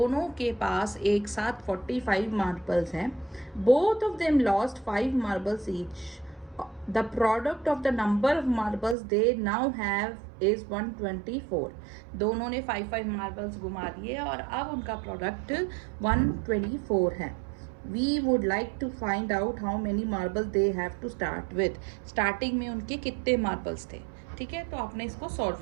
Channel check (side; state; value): left; drops out; at 9.0 s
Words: के पास एक साथ 45 मार्बल्स हैं. Both of them lost 5 marbles each. The product of the number of marbles they now have is 124. दोनों ने 5 marbles घुमा दिए और अब उनका प्रोडक्ट 124 है. We would like to find out how many marbles they have to start with. Starting में उनके कितने मार्बल्स थे. ठीक है, तो आपने इसको सॉल्व